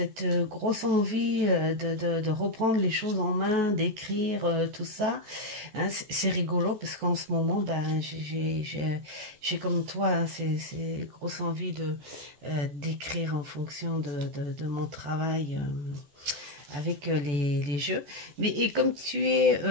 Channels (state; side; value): late; left; 14 ms